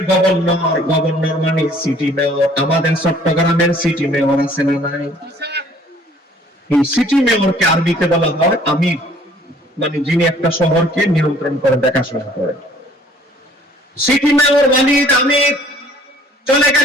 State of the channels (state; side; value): normal; both; correlation 0.56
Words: গভর্নর, গভর্নর মানে সিটি মেয়র, আমাদের চট্টগ্রামের সিটি মেয়র আছে না নাই? এই সিটি মেয়রকে আরবিতে বলা হয় আমির, মানে যিনি একটা শহরকে নিয়ন্ত্রণ করে, দেখাশোনা করে। সিটি মেয়র ওয়ালিদ আমির চলে